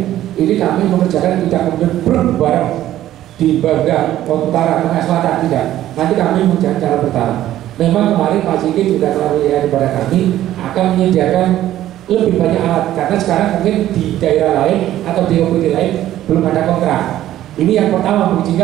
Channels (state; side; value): quieter; left; 13.2 dB